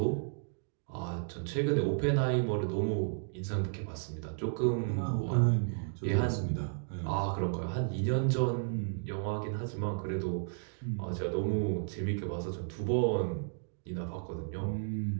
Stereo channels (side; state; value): left; silent; digital silence